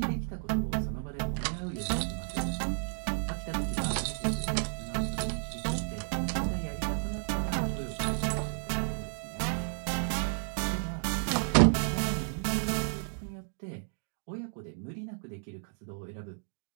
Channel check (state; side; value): silent; left; digital silence